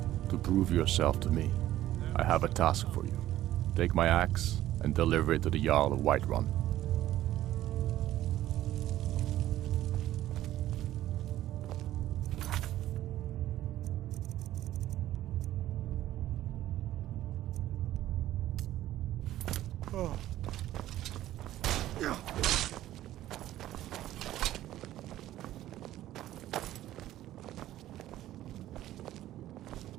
to prove yourself to me, I have a task for you. Take my axe and deliver it to the Jarl of Whiterun.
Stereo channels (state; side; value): quieter; left; 13.8 dB